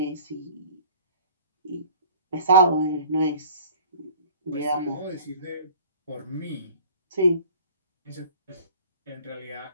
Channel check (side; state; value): both; inverted; correlation -0.48